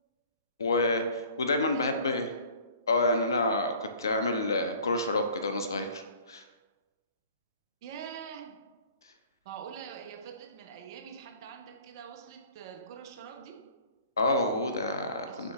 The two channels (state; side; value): inverted; both; correlation -0.50